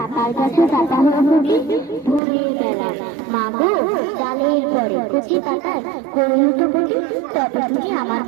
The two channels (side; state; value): left; drops out; at 2.2 s